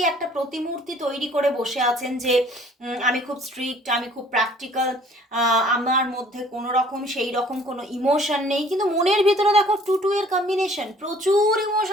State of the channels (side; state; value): both; normal; correlation 0.55